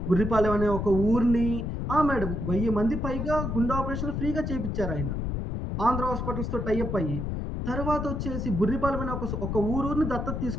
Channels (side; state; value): left; noise; rumble, 2 dB below the sound